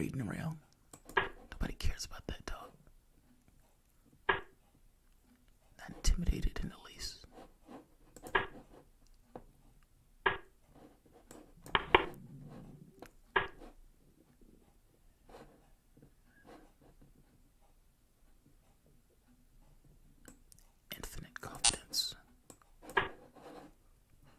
around. Nobody cares about that, dog. Not intimidated in the least. Infinite confidence.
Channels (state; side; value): identical; both; correlation 1.00